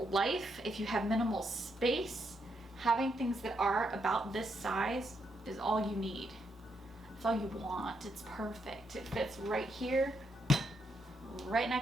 if you have minimal space, having things that are about this size is all you need. It's all you want. It's perfect. It fits right here, right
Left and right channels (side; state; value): both; normal; correlation 0.78